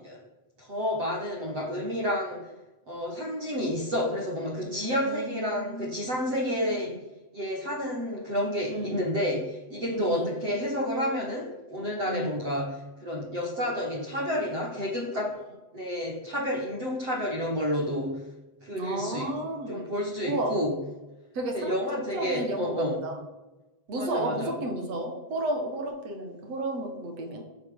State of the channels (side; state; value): left; late; 7.9 ms